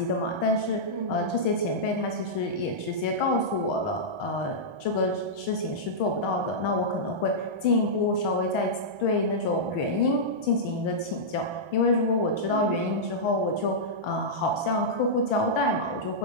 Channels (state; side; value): late; left; 1.3 ms